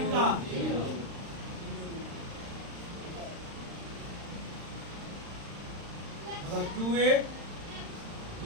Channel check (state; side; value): late; left; 35 ms